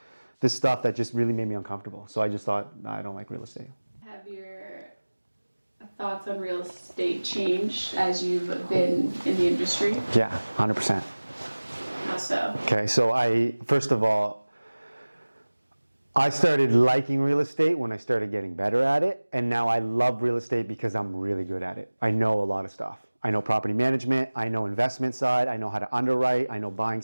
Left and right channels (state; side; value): inverted; both; correlation -1.00